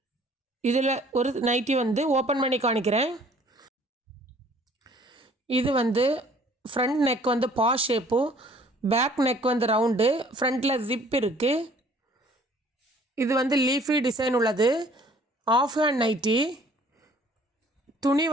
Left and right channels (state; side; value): normal; both; correlation 0.56